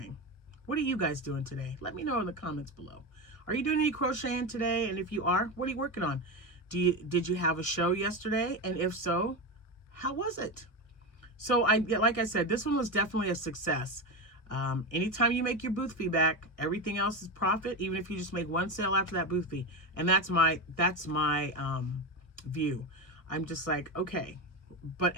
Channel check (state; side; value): late; right; 1.6 ms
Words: What are you guys doing today? Let me know in the comments below. Are you doing any crocheting today? And if you are, what are you working on? Did you have a show yesterday? And if so, how was it? So like I said, this one was definitely a success. Anytime you make your booth fee back, everything else is profit, even if you just make one sale after that booth fee. And that's my view. I'm just like, okay.